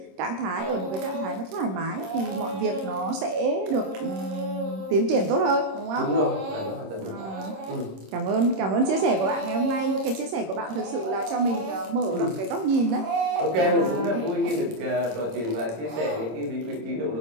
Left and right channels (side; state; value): left; late; 26 ms